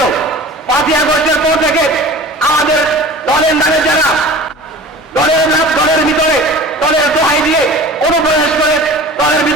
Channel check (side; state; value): both; normal; correlation 0.39